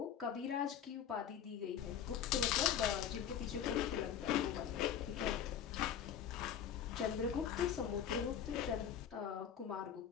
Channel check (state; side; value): quieter; right; 8.8 dB